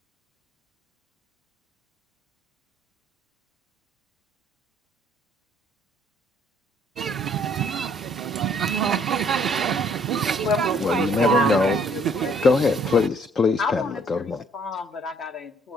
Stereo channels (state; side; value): normal; both; correlation 0.62